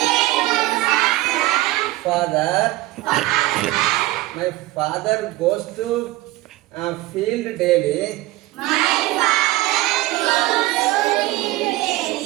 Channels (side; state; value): left; quieter; 18.0 dB